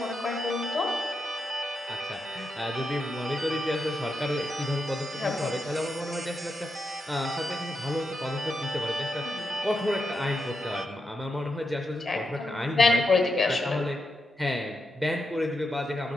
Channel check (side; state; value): both; normal; correlation 0.85